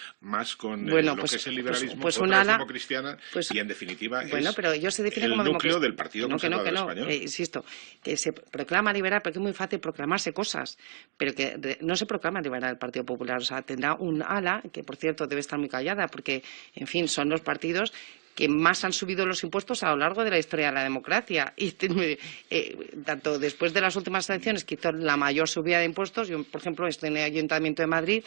más con Bueno, lo pues- que es el pues- liberalismo, pues un otra es ala- democristiana pues- y en definitiva Bueno, es pero ellos se definen el como núcleo democracia. del Partido Conservador Español. Insisto, que se proclama liberal porque es muy fácil proclamarse cosas, pero que no se proclama liberal el Partido Popular. O sea, tendrá un ala, que por cierto debe estar muy callada porque, en fin, son los partidos que más han subido los impuestos a lo largo de la historia de la democracia. Y tanto después de las últimas elecciones, que hizo la mayor subida de impuestos, yo, por ejemplo, estoy en el Ayuntamiento de Madrid,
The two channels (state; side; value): silent; left; 58 dB below the other